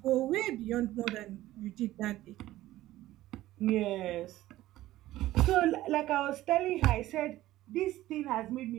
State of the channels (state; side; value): quieter; left; 15.5 dB